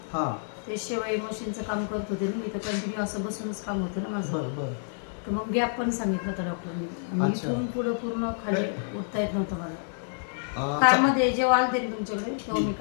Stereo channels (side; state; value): right; silent; digital silence